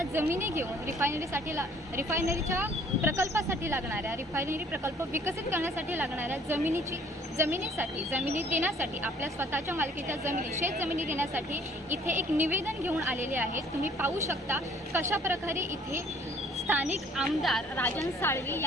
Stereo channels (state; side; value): normal; both; correlation 0.57